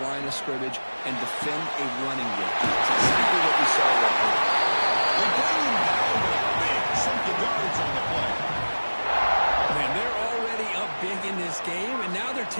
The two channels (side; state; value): both; inverted; correlation -1.00